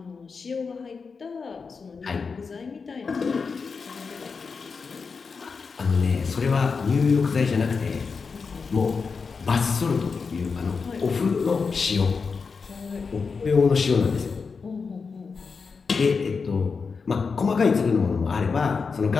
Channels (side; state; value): right; quieter; 5.1 dB